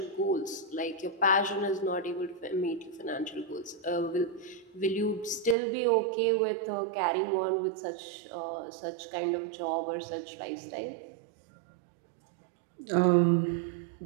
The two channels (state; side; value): drops out; left; at 5.6 s